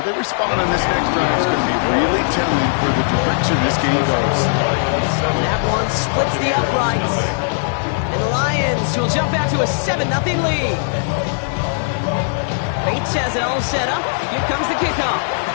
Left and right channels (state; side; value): silent; right; digital silence